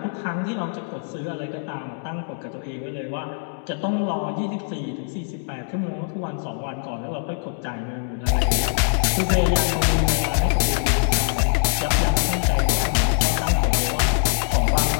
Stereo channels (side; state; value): right; silent; digital silence